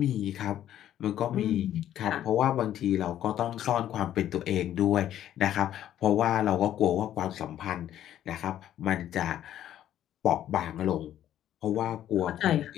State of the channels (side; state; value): right; quieter; 11.6 dB